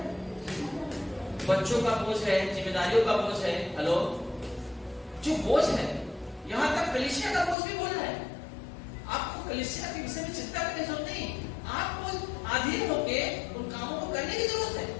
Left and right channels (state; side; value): drops out; right; at 7.6 s